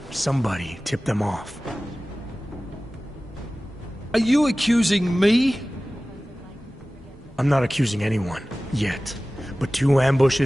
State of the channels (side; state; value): both; normal; correlation 0.97